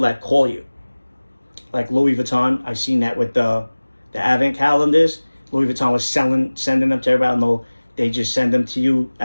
that call you. Like Louis Vuitton, I seen that with the Advent calendars. Louis Vuitton was sending them to everybody. No, they just send them to you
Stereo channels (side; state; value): both; inverted; correlation -1.00